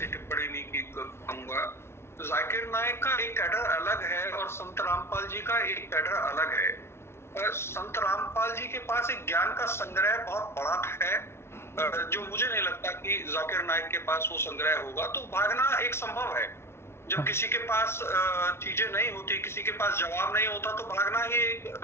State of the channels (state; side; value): late; right; 0.12 ms